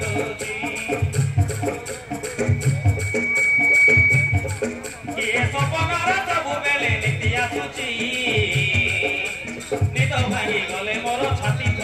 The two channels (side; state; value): both; identical; correlation 1.00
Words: होची ये सपनार सबु बेले नीति आसुची निद भांगी गले मोर छाती